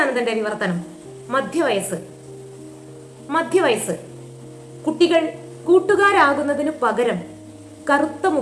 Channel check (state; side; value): identical; both; correlation 1.00